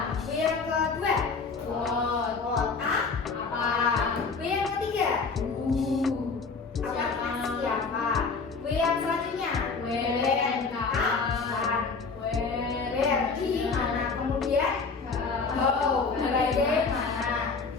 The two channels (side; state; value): right; quieter; 4.6 dB